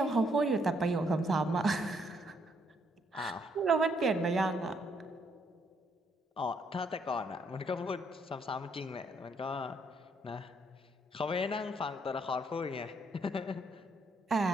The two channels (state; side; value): normal; both; correlation 0.71